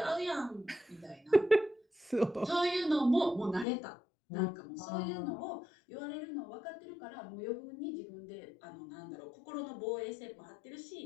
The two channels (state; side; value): drops out; right; at 3.7 s